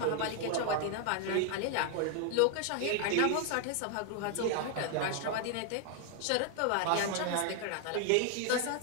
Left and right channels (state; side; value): different; both; correlation 0.00